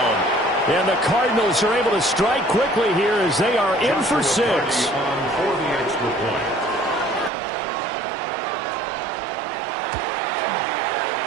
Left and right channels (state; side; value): drops out; left; at 7.3 s